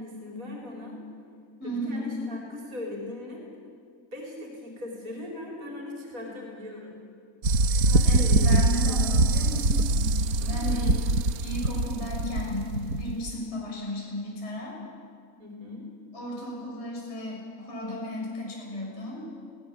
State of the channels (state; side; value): late; left; 4.2 ms